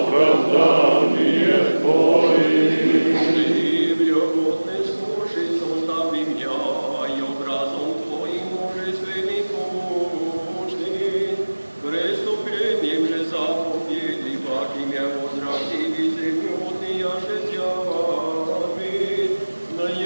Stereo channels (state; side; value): inverted; both; correlation -1.00